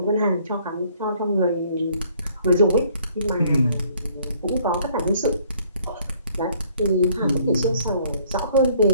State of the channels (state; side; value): inverted; both; correlation -0.61